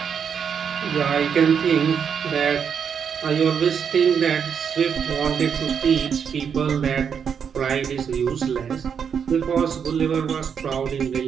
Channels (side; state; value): left; quieter; 7.2 dB